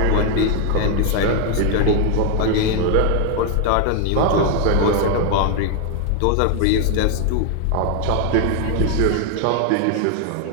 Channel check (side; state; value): both; different; correlation 0.00